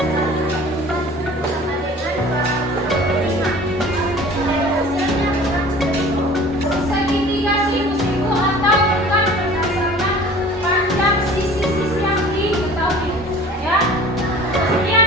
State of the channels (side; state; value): both; normal; correlation 0.45